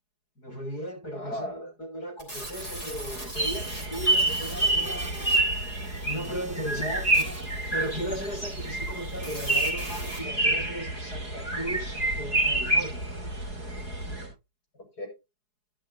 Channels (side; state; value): right; late; 4.7 ms